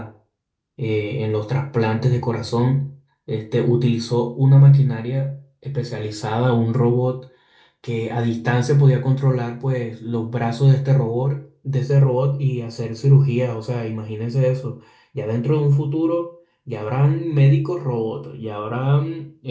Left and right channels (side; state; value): both; identical; correlation 1.00